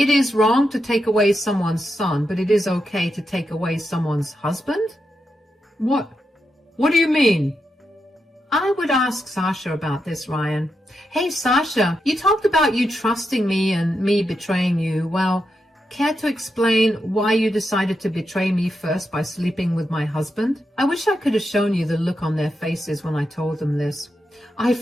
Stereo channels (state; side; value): normal; both; correlation 0.85